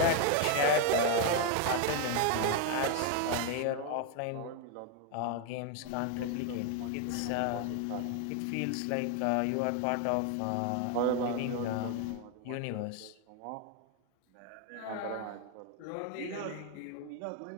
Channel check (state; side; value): different; both; correlation 0.01